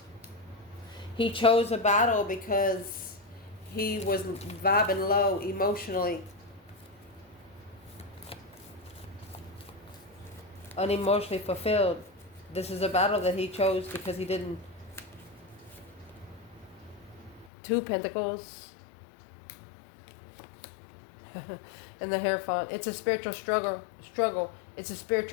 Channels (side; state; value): right; drops out; at 17.5 s